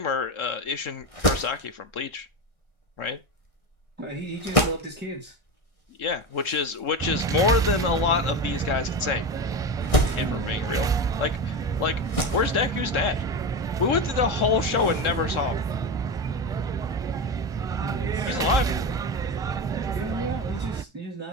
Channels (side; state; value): right; late; 1.4 ms